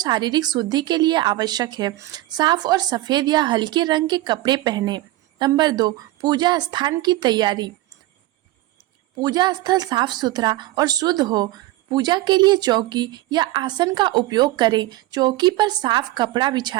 शुद्धि के लिए आवश्यक है। साफ और सफेद या हल्के रंग के कपड़े पहने। नंबर 2, पूजा स्थान की तैयारी। पूजा स्थल साफ सुथरा और शुद्ध हो। पूजा के लिए चौकी या आसन का उपयोग करें। चौकी पर साफ कपड़ा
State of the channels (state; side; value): quieter; left; 17.0 dB